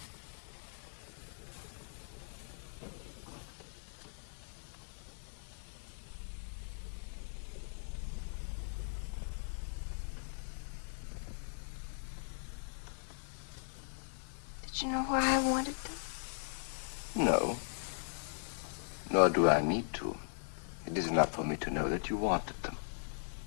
Did you know why I wanted them? No. Nor do I need to. It is enough for me to know that you wanted them.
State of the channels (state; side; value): silent; right; digital silence